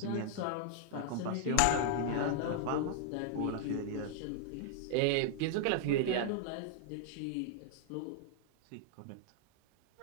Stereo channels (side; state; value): both; different; correlation 0.00